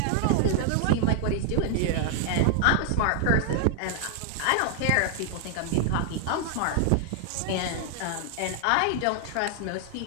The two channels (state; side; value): different; both; correlation 0.00